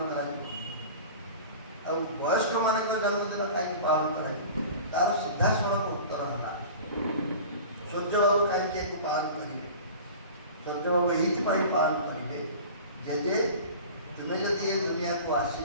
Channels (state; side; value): inverted; both; correlation -0.38